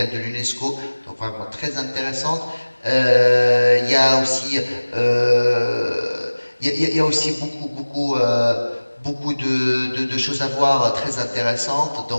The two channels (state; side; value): inverted; both; correlation -1.00